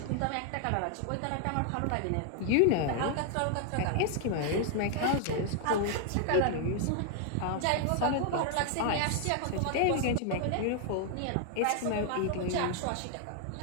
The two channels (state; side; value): different; both; correlation 0.00